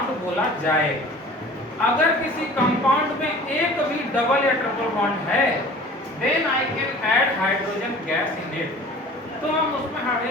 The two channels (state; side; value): normal; both; correlation 0.44